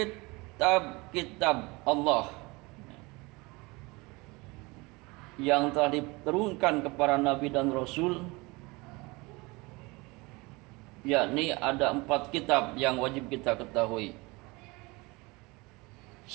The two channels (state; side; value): quieter; left; 24.7 dB